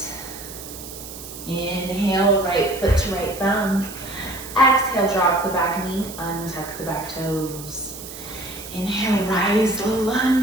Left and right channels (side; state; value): right; noise; hiss, 13 dB below the sound